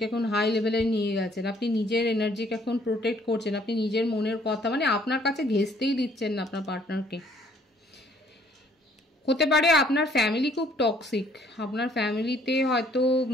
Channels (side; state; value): both; normal; correlation 0.62